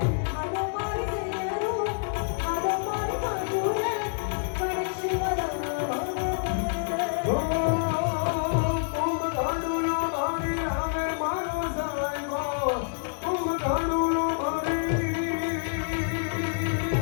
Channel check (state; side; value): silent; right; digital silence